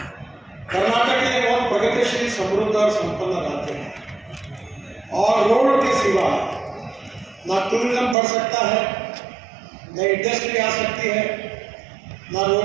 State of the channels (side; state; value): left; drops out; at 8.2 s